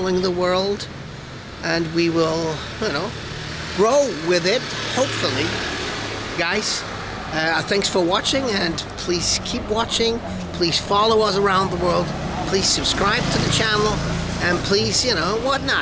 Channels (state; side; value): identical; both; correlation 1.00